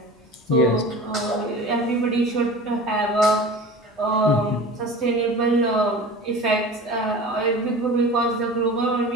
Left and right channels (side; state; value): both; normal; correlation 0.37